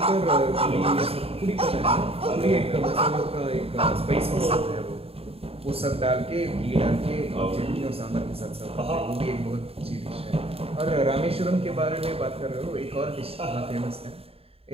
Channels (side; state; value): left; late; 0.28 ms